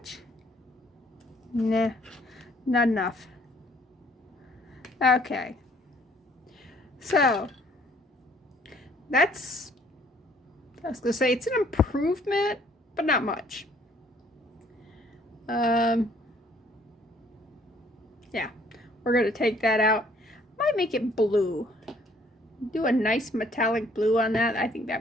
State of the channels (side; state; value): both; normal; correlation 0.61